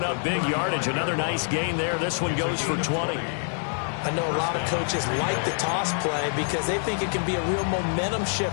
up big yardage. Another nice gain there. This one goes for 20. I know a lot of coaches like the toss play because they think it can be a real momentum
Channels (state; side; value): silent; right; 61 dB below the other